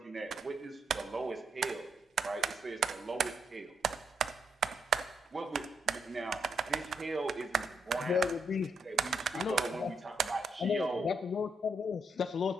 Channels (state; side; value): normal; both; correlation 0.79